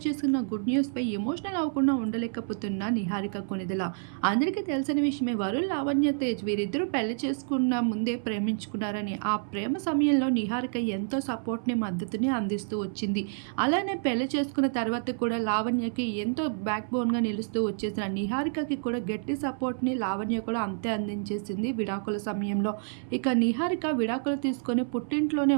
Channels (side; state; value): left; silent; 57 dB below the other